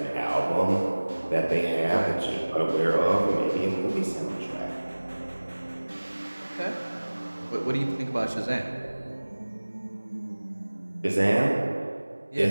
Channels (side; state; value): both; inverted; correlation -1.00